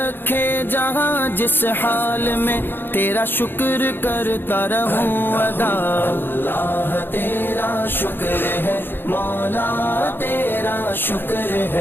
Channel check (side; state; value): right; late; 0.10 ms